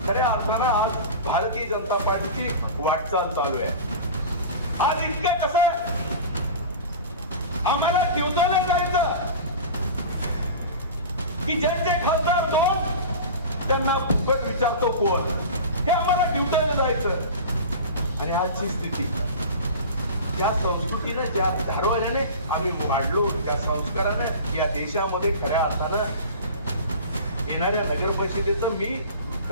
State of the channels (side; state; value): both; inverted; correlation -0.34